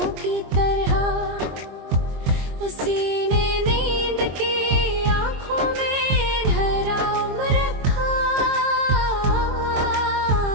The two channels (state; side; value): late; left; 22 ms